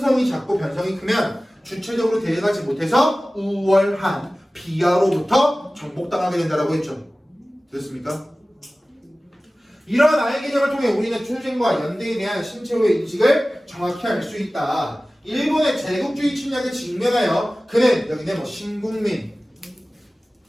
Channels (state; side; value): normal; both; correlation 0.97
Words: 작고 변성이 크면 주체적으로 대응하지 못해서 우월한 비하로부터 정복당하게 된다라고 했죠. 됐습니까? 이런 아의 개념을 통해 우리는 출생과 연대에 대한 신체호의 인식을 정확히 알 수 있다. 일본의 제국주의 침략에 직면하여 그는 여기는 뭐 신국민